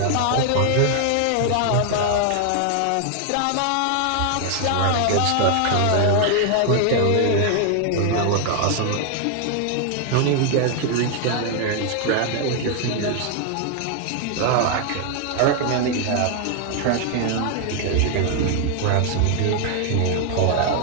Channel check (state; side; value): different; both; correlation 0.00